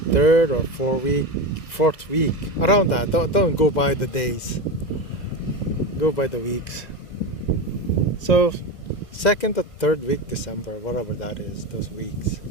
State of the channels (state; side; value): late; right; 2.1 ms